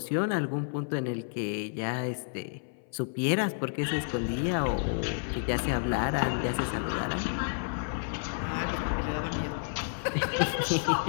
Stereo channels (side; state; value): right; silent; 57 dB below the other